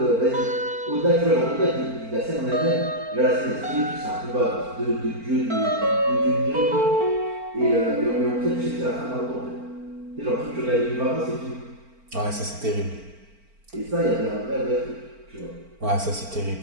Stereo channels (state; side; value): late; left; 4.4 ms